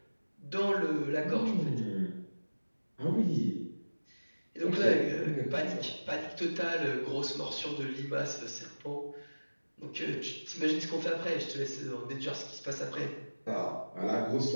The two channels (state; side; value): inverted; both; correlation -1.00